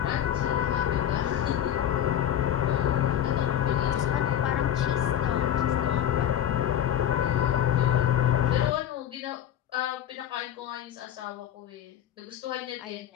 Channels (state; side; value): quieter; right; 10.5 dB